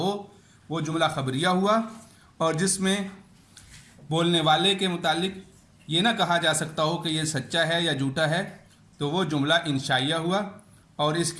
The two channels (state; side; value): identical; both; correlation 1.00